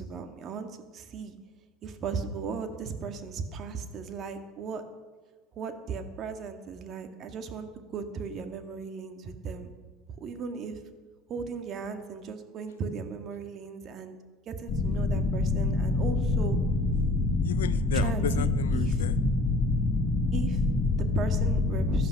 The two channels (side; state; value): both; normal; correlation 0.50